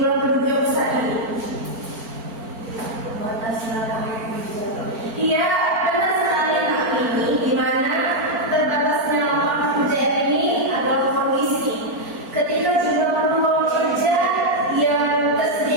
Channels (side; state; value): left; late; 4.4 ms